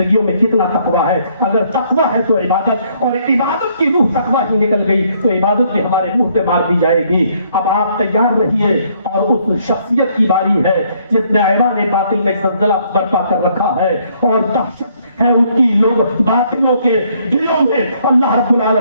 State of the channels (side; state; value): both; inverted; correlation -0.67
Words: میں کتنا تقویٰ ہے۔ اگر تقویٰ ہے تو عبادت، اور عبادت کی روح تقویٰ ہی نکل گئی تو عبادت بھی ہمارے منہ پہ مار دی جائے گی۔ اب آپ تیار رہیے اور اس شخصیت کی باری ہے جس نے ایوان باطل میں زلزلہ برپا کر رکھا ہے اور دہشت ہے اس کی لوگ باطنوں کے دلوں میں۔ اللہ رب